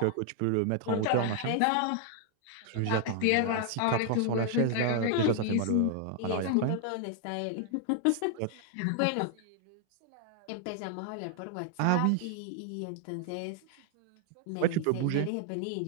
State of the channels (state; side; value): different; both; correlation 0.00